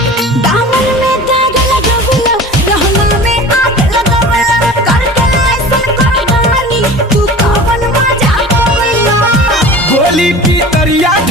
दामन में दाग लगावला रहना में आग लगावला करके ऐसन करवानी तू कवन मजा पावला गोली की तरिया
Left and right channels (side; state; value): both; normal; correlation 0.38